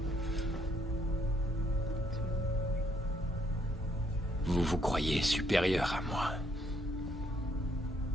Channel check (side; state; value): both; normal; correlation 0.70